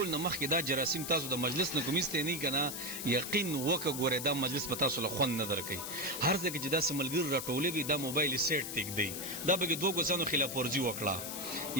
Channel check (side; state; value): left; noise; hiss, 6 dB below the sound